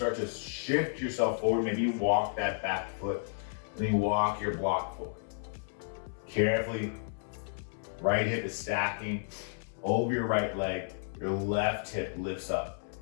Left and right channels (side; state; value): right; silent; 56 dB below the other